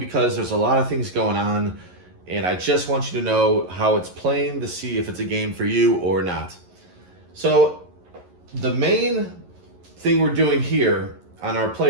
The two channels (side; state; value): left; late; 11 ms